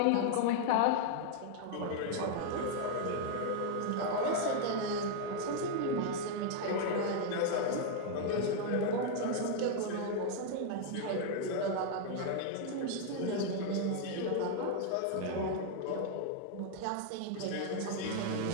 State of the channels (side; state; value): both; different; correlation 0.00